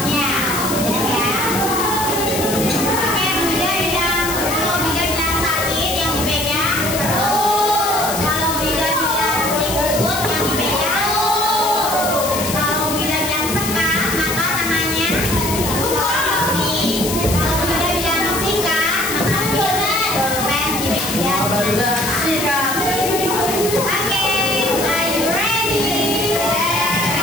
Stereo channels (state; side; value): noise; left; hiss, 4 dB below the sound